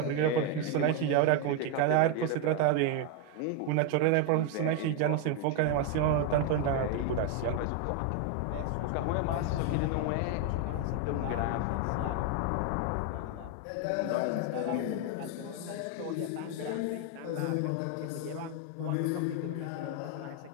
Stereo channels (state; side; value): different; both; correlation 0.01